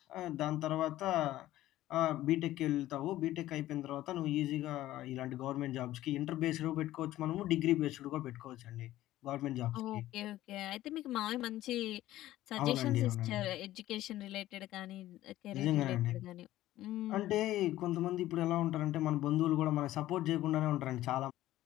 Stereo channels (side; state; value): right; quieter; 14.8 dB